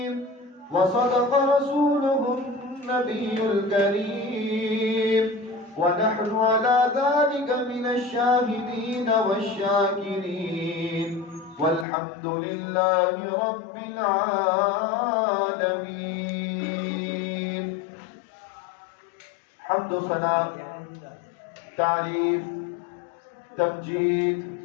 وصدق رسوله النبي الكريم ونحن على ذلك من الشاهدين والشاكرين والحمد لله رب العالمين. حمد و ثنا، تعریف، تمجید،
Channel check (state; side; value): drops out; right; at 11.9 s